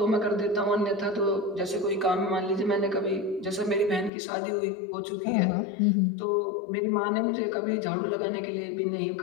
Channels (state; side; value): drops out; right; at 4.1 s